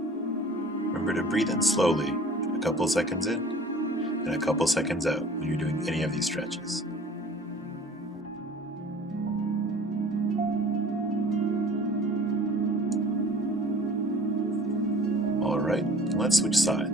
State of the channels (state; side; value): normal; both; correlation 0.48